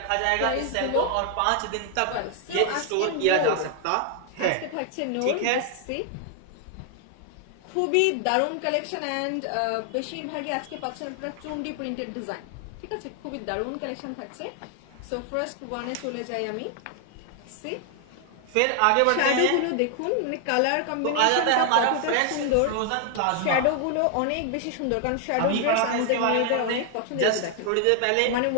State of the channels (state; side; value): different; both; correlation 0.00